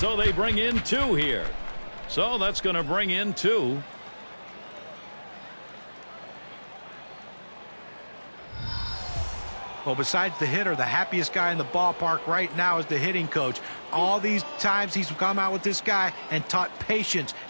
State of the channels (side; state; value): both; inverted; correlation -1.00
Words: they bring in 2 here. So that's going to bring in 2. Well, besides the hitter, the happiest guy in the ballpark right now is the hitting coach. All these times he's come out with this guy and taught patience